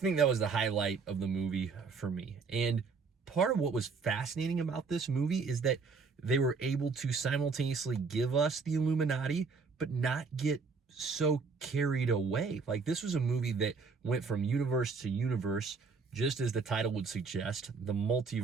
that was the highlight of the movie for me. And part of what was fascinating about this movie is that they were able to simultaneously give us the Illuminati, but not get so carried away. Like, this was a movie that went from universe to universe, just as the title would suggest, the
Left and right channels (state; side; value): quieter; left; 4.8 dB